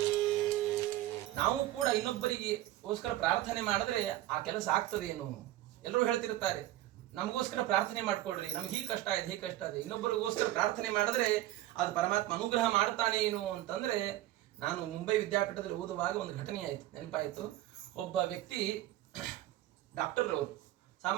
ನಾವು ಕೂಡ ಇನ್ನೊಬ್ಬರಿಗೋಸ್ಕರ ಪ್ರಾರ್ಥನೆ ಮಾಡಿದ್ರೆ ಆ ಕೆಲಸ ಆಗ್ತದೇನು? ಎಲ್ಲರೂ ಹೇಳ್ತಿರ್ತಾರೆ ನಮಗೋಸ್ಕರ ಪ್ರಾರ್ಥನೆ ಮಾಡ್ಕೊಳ್ರಿ, ನಮ್ಗೆ ಹೀಗೆ ಕಷ್ಟ ಇದೆ ಹೀಗೆ ಕಷ್ಟ ಇದೆ. ಇನ್ನೊಬ್ಬರಿಗೋಸ್ಕರ ಪ್ರಾರ್ಥನೆ ಮಾಡಿದ್ರೆ ಅದು ಪರಮಾತ್ಮ ಅನುಗ್ರಹ ಮಾಡ್ತಾನೆ ಏನು ಅಂತಂದ್ರೆ, ನಾನು ಮುಂಬೈ ವಿದ್ಯಾಪೀಠದಲ್ಲಿ ಓದುವಾಗ ಒಂದು ಘಟನೆ ಆಯ್ತು, ನೆನಪಾಯಿತು. ಒಬ್ಬ ವ್ಯಕ್ತಿ ಡಾಕ್ಟರ್ ಅವರು,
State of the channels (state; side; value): quieter; left; 14.9 dB